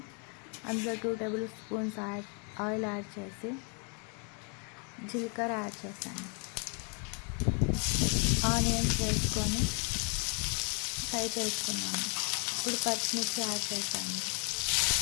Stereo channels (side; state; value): right; quieter; 37.2 dB